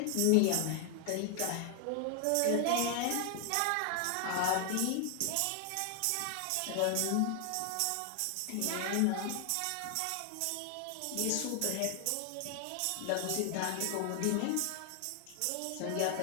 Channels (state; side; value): different; both; correlation 0.00